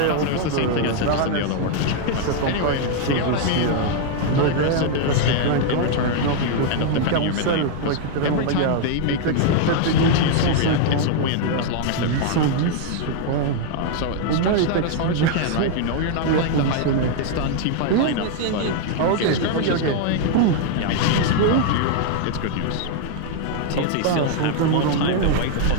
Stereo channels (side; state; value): both; different; correlation 0.00